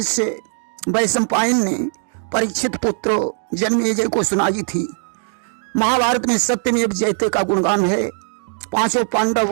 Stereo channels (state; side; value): silent; left; 55 dB below the other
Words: वैशंपायन ने परीक्षित पुत्र जन्मेजय को सुनाई थी। महाभारत में सत्यमेव जयते का गुणगान है। 5